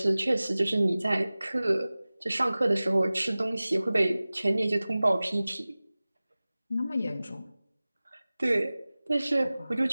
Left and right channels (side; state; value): both; inverted; correlation -0.98